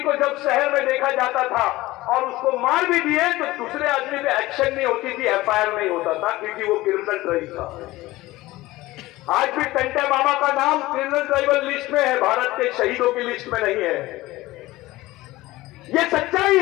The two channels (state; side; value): quieter; right; 18.4 dB